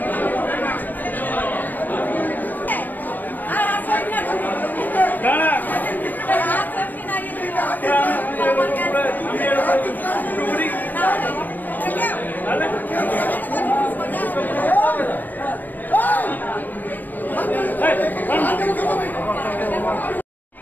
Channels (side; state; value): right; late; 0.088 ms